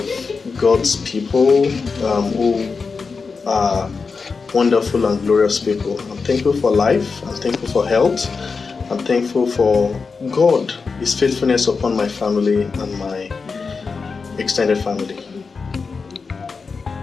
God's people who are wonderful and glorious people. I'm thankful for life. I'm thankful for health. I'm thankful for God, His faithfulness upon my family and my extended family.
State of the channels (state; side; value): quieter; right; 4.8 dB